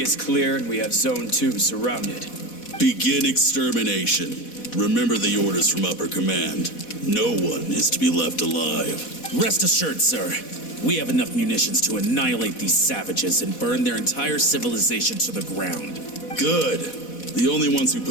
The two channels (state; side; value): late; right; 4.1 ms